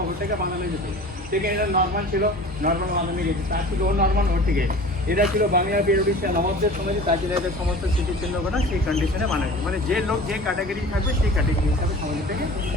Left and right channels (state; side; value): normal; both; correlation 0.41